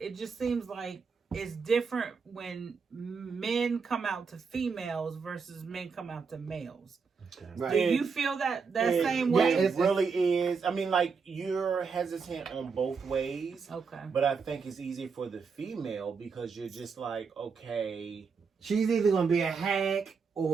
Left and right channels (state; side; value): quieter; left; 5.4 dB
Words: just seems like it's different when men come out to females versus men come out to males. Okay. Right. Do you feel that same way? It really is. I mean, like, you're hesitant on both ways. Okay. But I think it's easier for the female because you're just like, okay. She's either going to be a hack